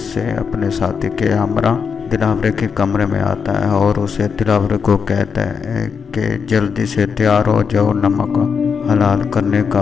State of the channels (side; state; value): right; quieter; 6.2 dB